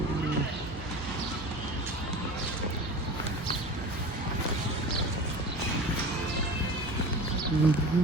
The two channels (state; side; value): normal; both; correlation 0.35